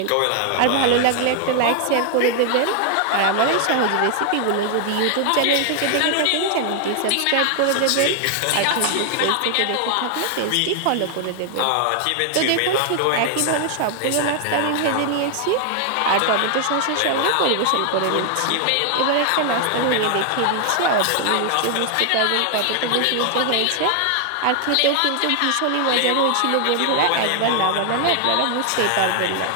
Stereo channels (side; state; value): both; different; correlation 0.00